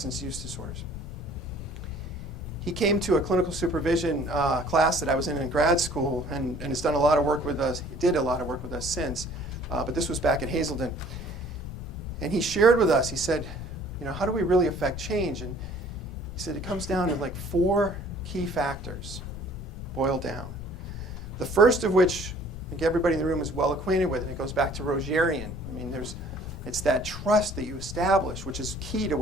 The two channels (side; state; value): left; noise; rumble, 13 dB below the sound